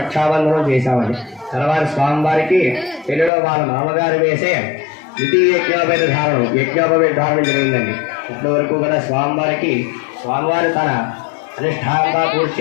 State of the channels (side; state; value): right; drops out; at 3.3 s